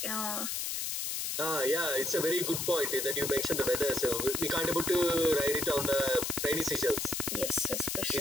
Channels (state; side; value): noise; left; hiss, 2 dB below the sound